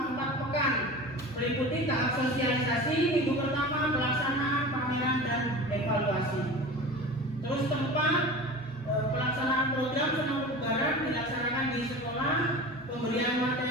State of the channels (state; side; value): normal; both; correlation 0.34